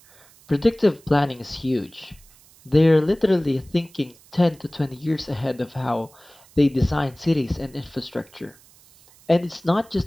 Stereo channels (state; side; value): noise; right; hiss, 27 dB below the sound